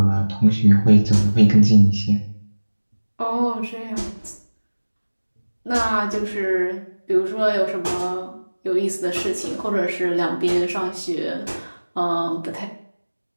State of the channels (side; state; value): both; inverted; correlation -1.00